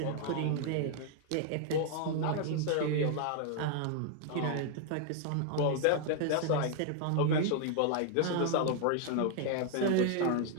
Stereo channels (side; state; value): both; different; correlation 0.00